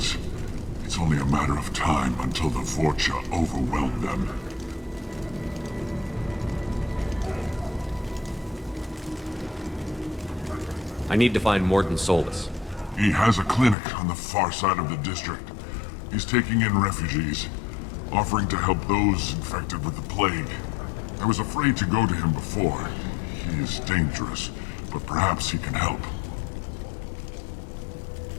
it's only a matter of time until the Vorcha overwhelm them. I need to find Morden Solus. He has a clinic on the far side of the district. He's taking in refugees, offering to help those infected with the plague. I was afraid to go to him before. He is dangerous, but perhaps he can help.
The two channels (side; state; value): right; drops out; at 13.8 s